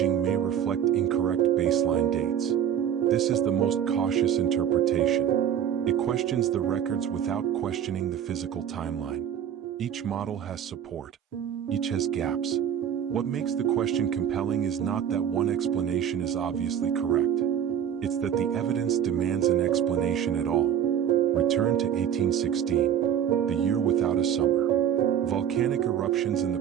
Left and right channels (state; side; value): quieter; left; 9.3 dB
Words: may reflect incorrect baseline dates. This is the most cautious interpretation. It questions the records without questioning the physical timeline. Each model has support. Each has gaps. What makes the question compelling is not that one explanation is obviously correct. It's that the evidence demands an explanation at all. Return to 1816, the year without a summer. Volcanic eruptions in the